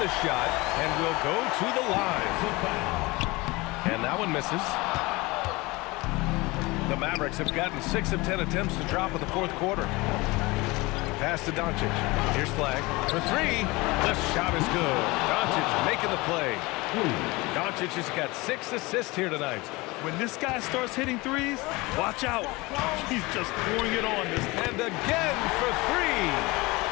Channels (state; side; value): quieter; right; 23.0 dB